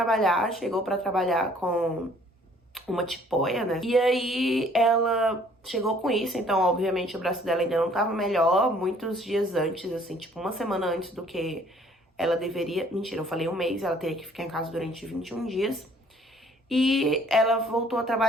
chegou pra trabalhar com uma tipóia, né? E aí ela chegou com isso, então obviamente o braço dela ainda não tava melhor, muitos dias antes, assim, tipo uma semana antes do que ela deveria, mentira, eu falei um mês, ela teria que ficar em casa durante 21 dias. E ela voltou a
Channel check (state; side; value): normal; both; correlation 0.58